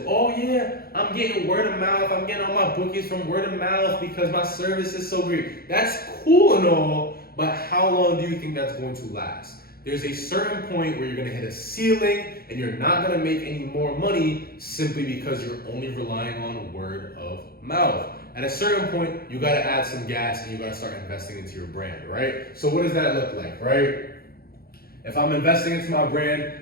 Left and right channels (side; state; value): right; late; 0.44 ms